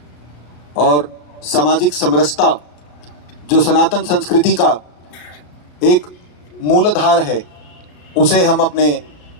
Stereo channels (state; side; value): late; right; 34 ms